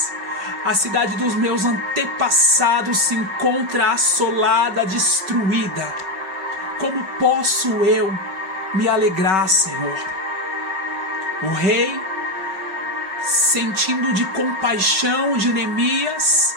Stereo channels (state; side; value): late; left; 5.3 ms